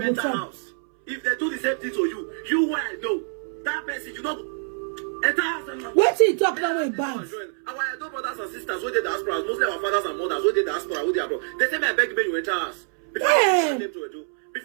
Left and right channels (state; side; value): silent; left; 62 dB below the other